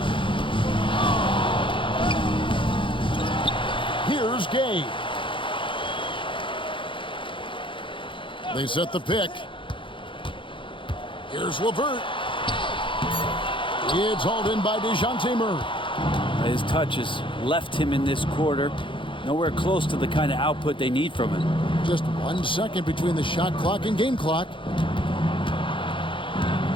Here's Gay. They set the pick. Here's LeVert. It's hauled in by DeJounte Murray. His touch has left him in this quarter. Nowhere close to the kind of output they need from him. Just 1 second between the shot clock and game clock.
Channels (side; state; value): right; late; 0.25 ms